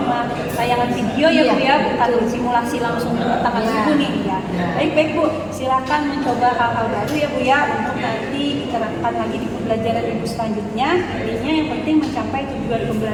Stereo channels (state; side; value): identical; both; correlation 1.00